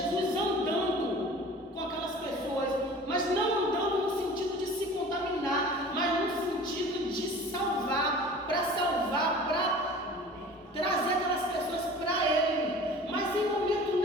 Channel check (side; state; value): both; normal; correlation 0.42